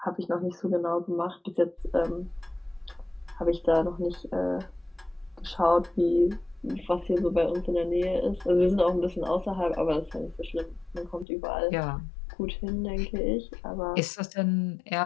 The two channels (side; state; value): right; drops out; at 11.2 s